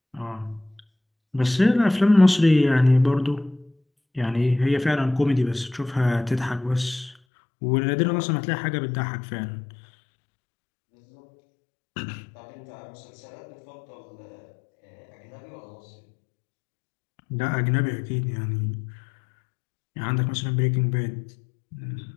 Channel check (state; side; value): drops out; right; at 7.2 s